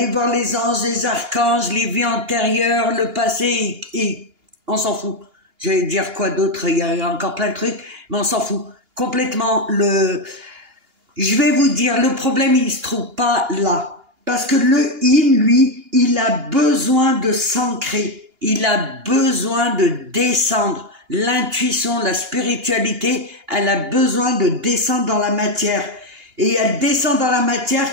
voir les anges, les archanges, les vies antérieures, le passé, et on s'en fout. J'allais dire quoi d'autre, il y a encore plein de trucs, mais on s'en fout. Complètement, je vais vous dire, le problème, il se trouve pas là. Parce que le yin, lui, il a besoin de s'ancrer, il a besoin de descendre. L'intuition, la spiritualité, elle a besoin de descendre dans la matière. Et elle descend dans la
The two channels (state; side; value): late; left; 2.8 ms